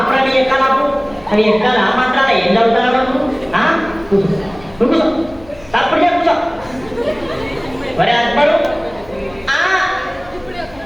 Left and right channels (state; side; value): noise; left; hum, 24 dB below the sound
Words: నీ ఎక్కాలాపు అవి ఎక్కాలి ఆ మాత్రాల ఏం చదువుతారా కూర్చో తప్పుడు కూర్చో. ఒరే అక్బరు